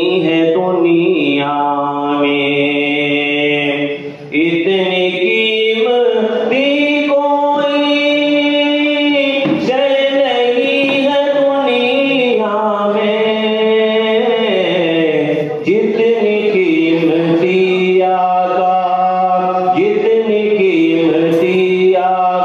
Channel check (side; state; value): both; identical; correlation 1.00